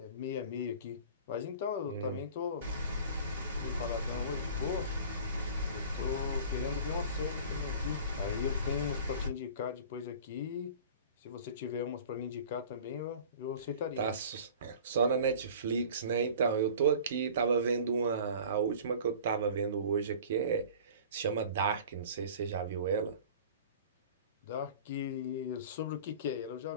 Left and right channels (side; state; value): both; inverted; correlation -0.43